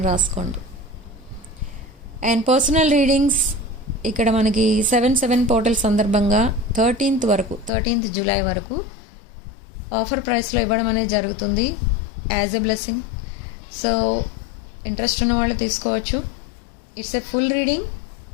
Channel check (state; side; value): drops out; right; at 7.7 s